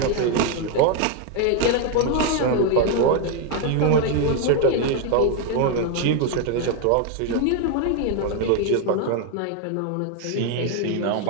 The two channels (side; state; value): both; different; correlation 0.01